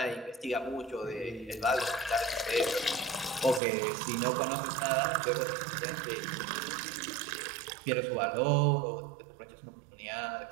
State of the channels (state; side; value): drops out; left; at 3.6 s